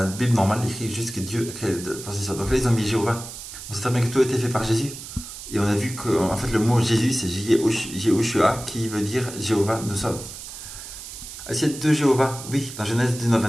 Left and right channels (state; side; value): noise; right; hiss, 12 dB below the sound